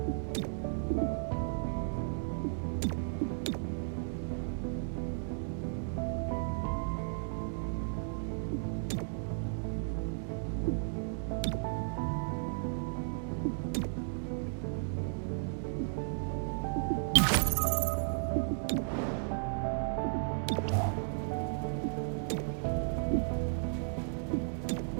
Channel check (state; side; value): silent; left; digital silence